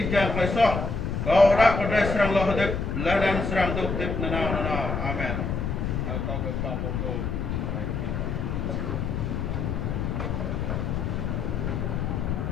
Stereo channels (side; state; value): left; noise; rumble, 2 dB below the sound